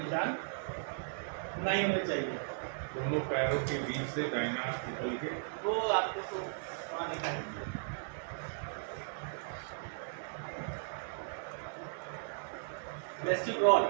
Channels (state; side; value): silent; left; digital silence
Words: नहीं होने चाहिए। दोनों पैरों के बीच से दाहिना हाथ निकल के वो आपको तो वहाँ दिखाएंगे। वेस्टिब्यूल